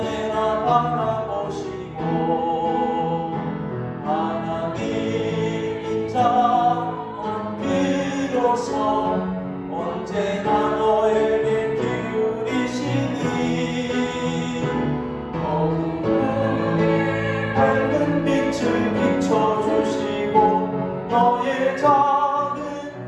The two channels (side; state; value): both; identical; correlation 1.00